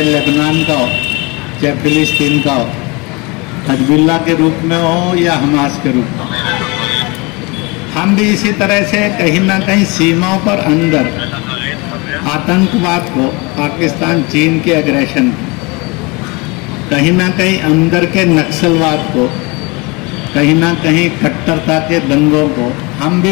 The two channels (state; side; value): quieter; right; 27.0 dB